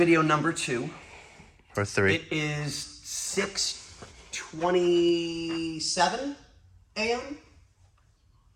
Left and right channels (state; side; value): identical; both; correlation 1.00